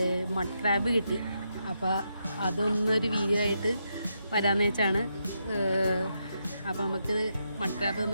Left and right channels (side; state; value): both; inverted; correlation -0.82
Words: മഡ് ക്രാബ് കിട്ടി. അപ്പോൾ അതൊന്നൊരു വീഡിയോ ആയിട്ട് വരാമെന്ന് വെച്ചാണ്. അപ്പോൾ നമുക്ക് മഡ് ക്രാബ്